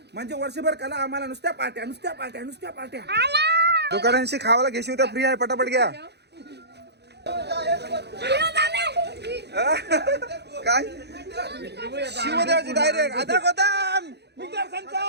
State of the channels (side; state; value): left; late; 0.49 ms